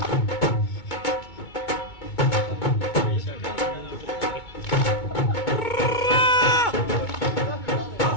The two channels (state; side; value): late; right; 2.2 ms